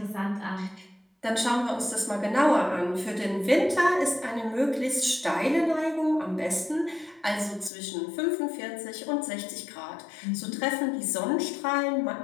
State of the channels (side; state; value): right; drops out; at 7.7 s